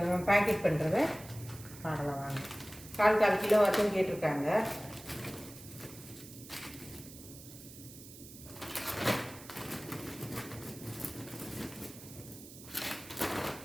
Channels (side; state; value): right; noise; hiss, 16 dB below the sound